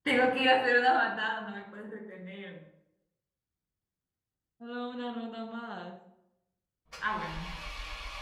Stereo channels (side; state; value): both; identical; correlation 1.00